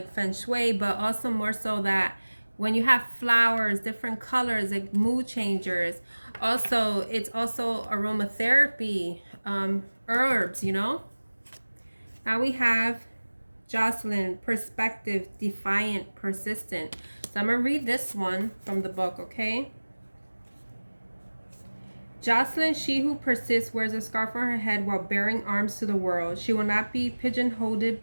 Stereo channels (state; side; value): inverted; both; correlation -1.00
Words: feng shui, but also more so that when you have flowers, different colors, like mood changers. Also, it's also aromatherapy, herbs, you know. Now we have Jocelyn, perspective, defiant, persistent. So I'm going to read this one from the book, okay? Jocelyn, she who persists, wears a scarf on her head while bearing arms to the world. She will not be pigeonholed